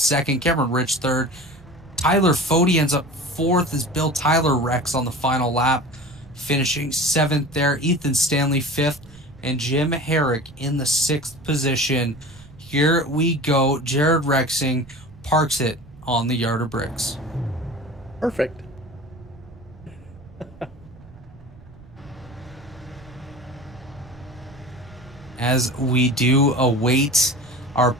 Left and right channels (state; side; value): noise; right; rumble, 22 dB below the sound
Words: Cameron Rich third. Tyler Fody ends up fourth as Bill Tyler wrecks on the final lap, finishing seventh there. Ethan Stanley fifth, and Jim Herrick in the sixth position. Here we go. Jared Rexing parks it on the yard of bricks. Perfect. As we do await our